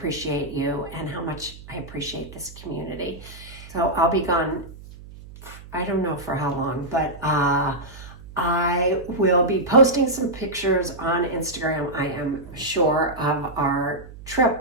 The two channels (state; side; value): noise; right; hum, 17 dB below the sound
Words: you and how much I appreciate this community. So I'll be gone, I don't know for how long, but I will be posting some pictures on Instagram, I am sure, of our